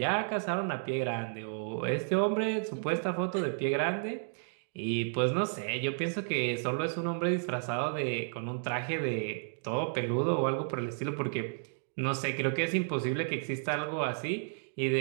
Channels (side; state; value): left; silent; digital silence